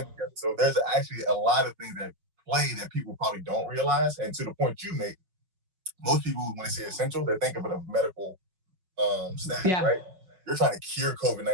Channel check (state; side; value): late; left; 5.4 ms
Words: together. So there's actually a lot of things that play that people probably don't realize. And to the point you make, most people, when they say essential, they think of it as medical staff, right? You're trying to cure